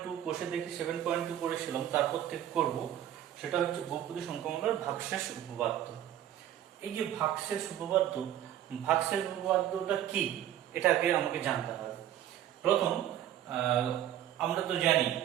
কোষে দেখি 7.2 করেছিলাম, তারপর থেকে করব সেটা হচ্ছে বহুপদী সংখ্যামালার ভাগশেষ উপপাদ্য। এই যে ভাগশেষ উপপাদ্যটা কি এটাকে আমাকে জানতে হবে। প্রথম আমরা তো জানি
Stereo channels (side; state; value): left; quieter; 11.4 dB